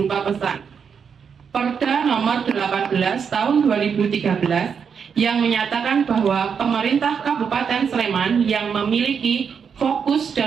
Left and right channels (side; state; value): left; quieter; 6.7 dB